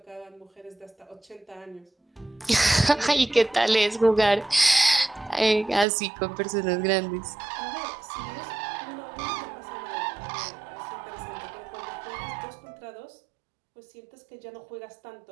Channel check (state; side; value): drops out; left; at 5.9 s